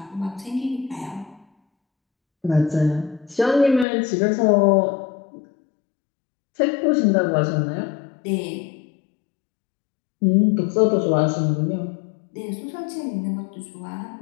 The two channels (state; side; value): drops out; right; at 3.9 s